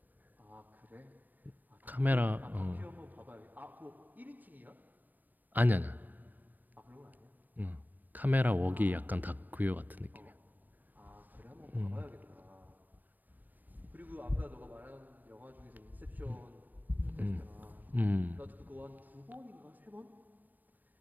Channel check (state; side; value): late; left; 0.088 ms